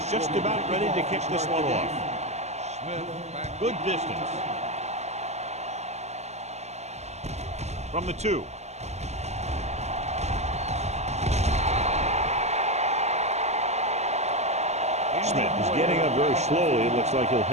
just about ready to kick this one off. Good distance. From the 2. Smith is getting up very slowly. It looks like he'll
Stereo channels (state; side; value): late; left; 0.32 ms